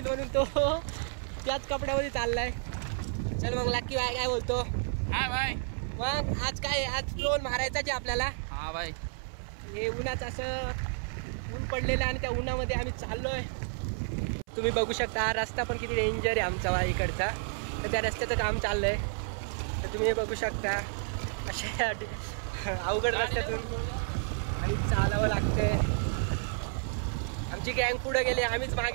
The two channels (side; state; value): left; silent; 57 dB below the other